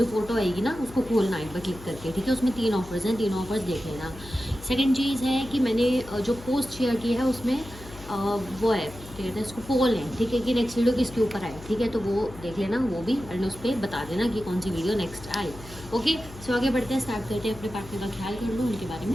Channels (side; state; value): left; noise; hum, 17 dB below the sound